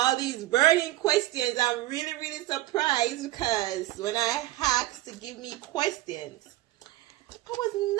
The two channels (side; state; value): left; quieter; 16.6 dB